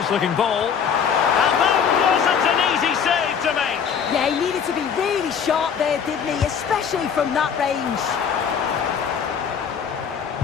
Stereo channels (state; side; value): quieter; right; 7.2 dB